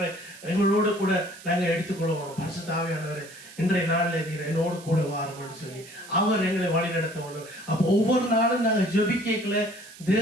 எங்களோடு கூட நாங்கள் எடுத்துக்கொள்வோம். பரிசுத்த ஆவியானவரை இன்றைய நாளில் நீர் என்னோடு கூட வாரும்னு சொல்லி அவர் எங்களை வழி நடத்த வேண்டும். அப்போ ஒவ்வொரு நாளும் நாங்கள் ஜெபிக்கல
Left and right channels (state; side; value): noise; right; hiss, 19 dB below the sound